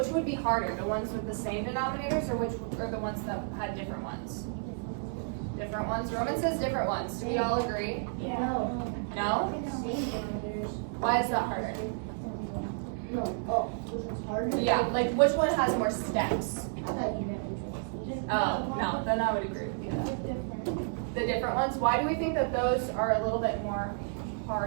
would be harder? The ones with the same denominators or the ones that had different ones? Different ones? Roman says different ones. Do we all agree? No. No? Same denominators. Why is that harder? No. Oh, which one's harder? Yeah, like which one has more steps? I thought you meant which one. Oh, no, then I would agree with you. The different ones, why do we think that those are a little bit more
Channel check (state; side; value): silent; left; digital silence